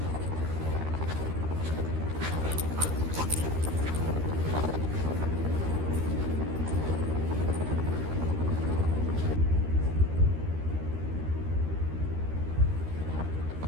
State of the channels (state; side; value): late; left; 13 ms